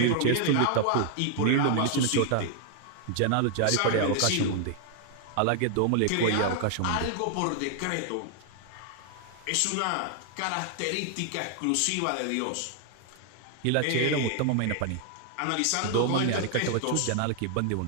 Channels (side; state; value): both; different; correlation 0.00